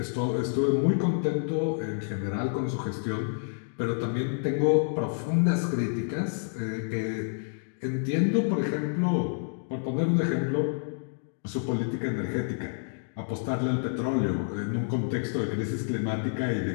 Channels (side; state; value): right; silent; digital silence